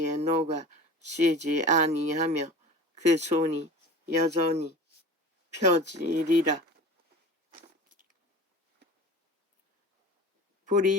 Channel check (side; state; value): both; normal; correlation 0.37